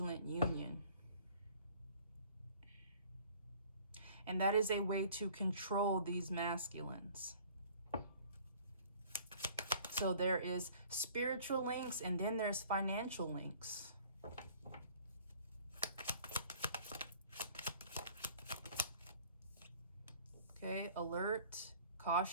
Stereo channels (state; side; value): inverted; both; correlation -0.51